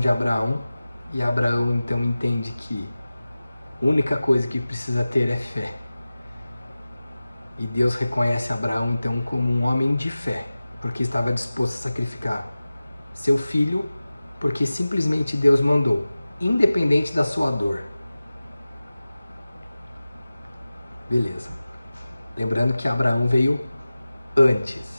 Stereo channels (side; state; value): both; inverted; correlation -0.96